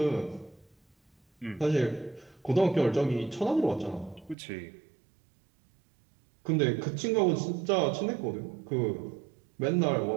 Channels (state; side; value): drops out; left; at 4.4 s